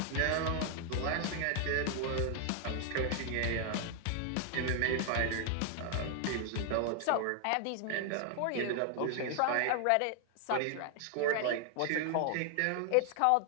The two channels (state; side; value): different; both; correlation 0.00